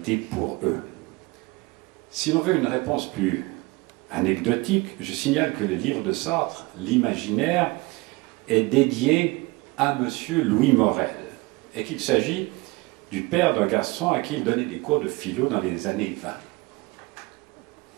pour eux. Si l'on veut une réponse plus anecdotique, je signale que le livre de Sartre, L'Imaginaire, est dédié à M. Louis Morel et qu'il s'agit du père d'un garçon à qui il donnait des cours de philo dans les années 20.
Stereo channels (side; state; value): left; quieter; 23.7 dB